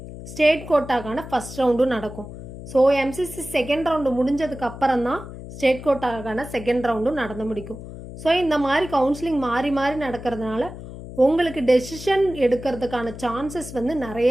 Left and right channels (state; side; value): noise; left; hum, 12 dB below the sound